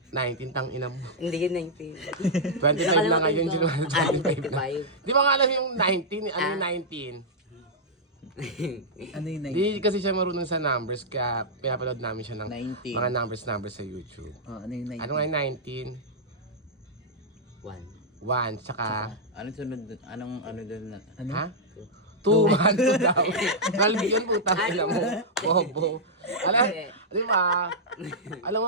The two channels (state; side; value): normal; both; correlation -0.08